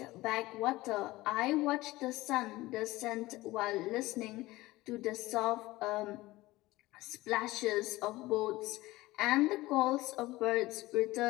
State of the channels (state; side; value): quieter; right; 18.8 dB